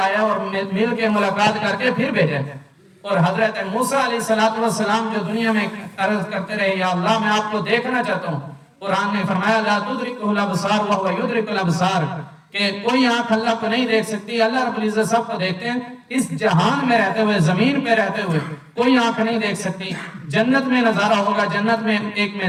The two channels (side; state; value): both; identical; correlation 1.00